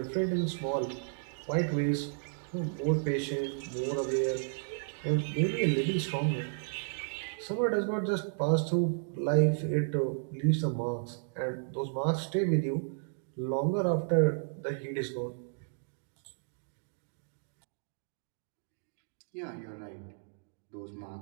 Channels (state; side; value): silent; left; digital silence